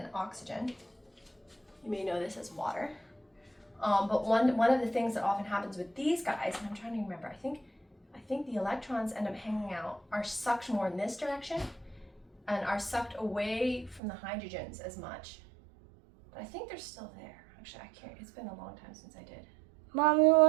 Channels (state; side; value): drops out; left; at 14.0 s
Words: oxygen. You may know this as water. But one of the things that often happens with these guys, and I'm trying to remember, I think the electrons end up hanging out, are sucked more in this direction and are sucked away from the hydrogens as much. But I think they're still there. Actually, I can't, it's been a long time since I did. Mommy,